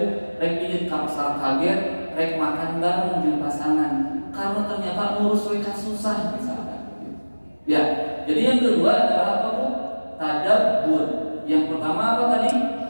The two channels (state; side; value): inverted; both; correlation -1.00